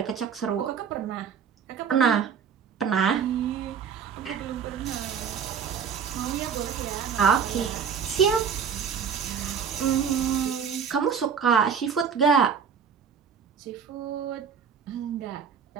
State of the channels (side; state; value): left; quieter; 7.1 dB